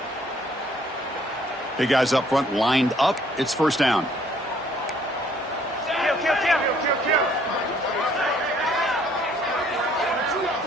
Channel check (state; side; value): normal; both; correlation 0.62